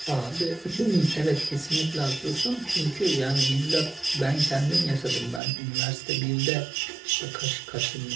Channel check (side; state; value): left; drops out; at 5.4 s